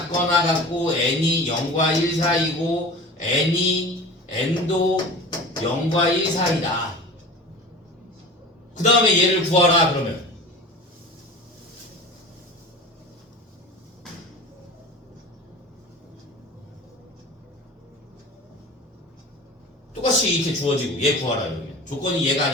같고 n이 0과 1 사이고 n도 0과 1 사이다. 그 다음에 얘를 구하라 그러면 똑같이 이렇게 주어지고 얘 구하라 이러면 조건이 얘가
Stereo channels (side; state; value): both; normal; correlation 0.36